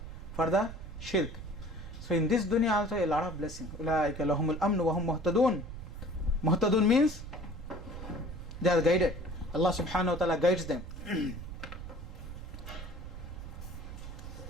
for the shirk. So in this dunya also a lot of blessings. أولئك لهم الأمن وهم مهتدون. Muhtadun means they are guided. Allah subhanahu wa ta'ala guides them.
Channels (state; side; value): noise; right; rumble, 10 dB below the sound